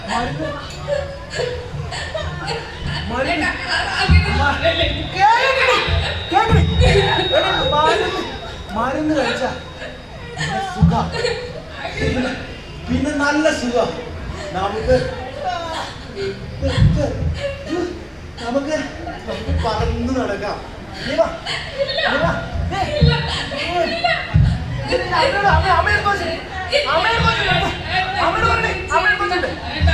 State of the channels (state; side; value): identical; both; correlation 1.00